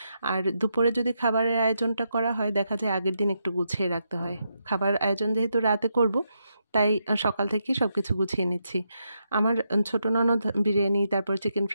আর দুপুরে যদি খাবারের আয়োজনটা করা হয় দেখা যায় আগের দিন একটু গুছিয়ে রাখতে হয়। খাবার আয়োজন যেহেতু রাতে করব তাই সকাল থেকেই সবকিছু গুছিয়ে নিচ্ছি। আমার ছোট ননদ বিরিয়ানি তারপর চিকেন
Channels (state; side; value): inverted; both; correlation -0.82